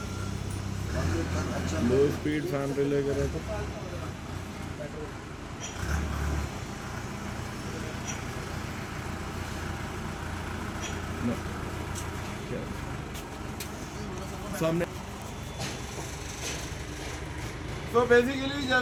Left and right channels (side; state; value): both; identical; correlation 1.00